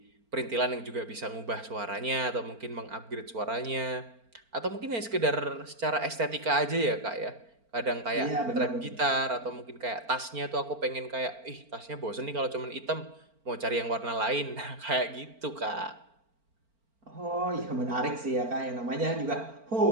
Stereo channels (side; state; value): left; late; 4.4 ms